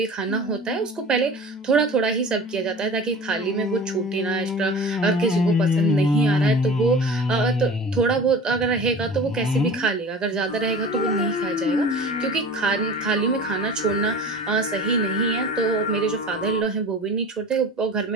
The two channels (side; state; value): both; normal; correlation 0.37